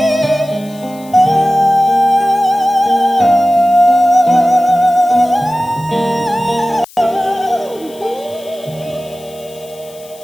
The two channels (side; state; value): left; noise; hiss, 23 dB below the sound